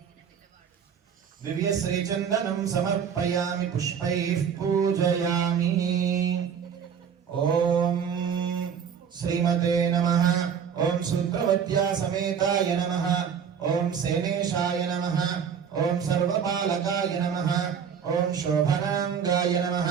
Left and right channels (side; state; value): left; quieter; 7.4 dB